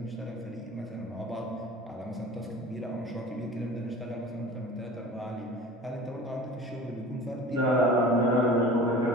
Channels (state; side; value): normal; both; correlation 0.40